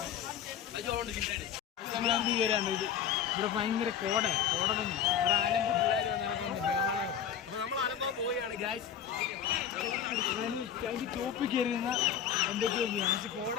നമ്മളെന്ത് കയറാണ്ട് ഇവിടെ ഭയങ്കര കോട വന്നു. ഒരു ആലമ്പ് പിള്ളേർ നടക്കുന്നു. അപ്പൊ നമ്മൾ ആലമ്പാൻ പോവുകയാണ് ഗായ്സ്. അതിന് ടോപ്പിൽ കയറുന്ന എന്തൊക്കെയോ ചെയ്യാം. പക്ഷെ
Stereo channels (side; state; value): right; quieter; 8.9 dB